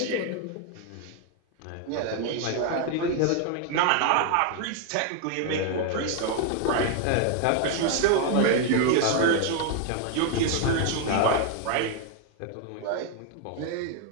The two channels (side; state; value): both; different; correlation 0.00